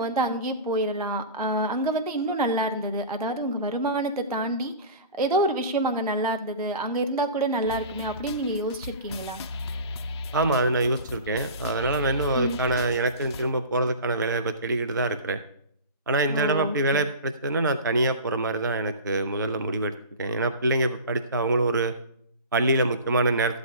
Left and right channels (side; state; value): both; inverted; correlation -0.35